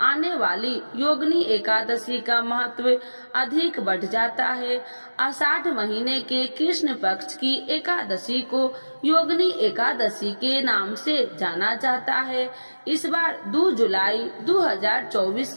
आने वाली योगिनी एकादशी का महत्व अधिक बढ़ जाता है। आषाढ़ महीने के कृष्ण पक्ष की एकादशी को योगिनी एकादशी के नाम से जाना जाता है। इस बार 2 जुलाई 2024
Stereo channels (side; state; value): both; inverted; correlation -1.00